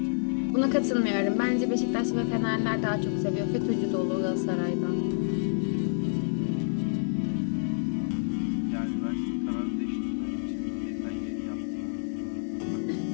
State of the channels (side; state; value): right; silent; digital silence